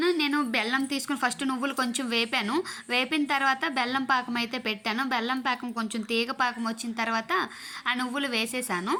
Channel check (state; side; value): identical; both; correlation 1.00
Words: నేను బెల్లం తీసుకుని ఫస్ట్ నువ్వులు కొంచెం వేపిన తర్వాత బెల్లం పాకం అయితే పెట్టాను. బెల్లం పాకం కొంచెం తీగ పాకం వచ్చిన తర్వాత ఆ నువ్వులు